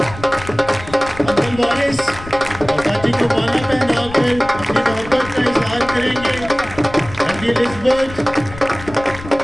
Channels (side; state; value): left; noise; rumble, 14 dB below the sound